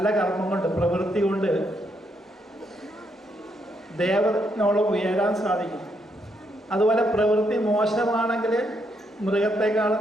കർമ്മം കൊണ്ട്, പ്രവൃത്തി കൊണ്ട് ദേവനോളം ഉയരാൻ സാധിക്കും. അതുപോലെ പ്രവൃത്തി മോശമാണെങ്കിൽ മൃഗത്തെക്കാളും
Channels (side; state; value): both; normal; correlation 0.77